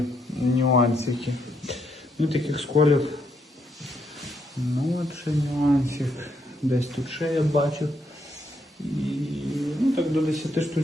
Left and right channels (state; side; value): normal; both; correlation 0.76